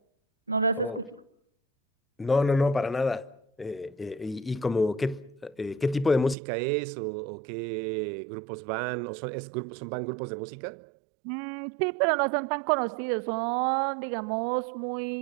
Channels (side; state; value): left; drops out; at 6.4 s